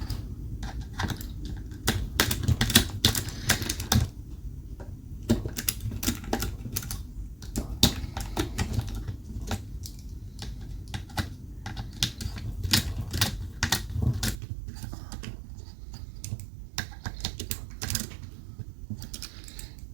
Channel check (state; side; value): drops out; left; at 14.4 s